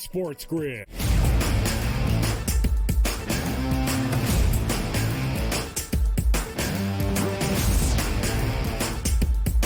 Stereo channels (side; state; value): both; identical; correlation 1.00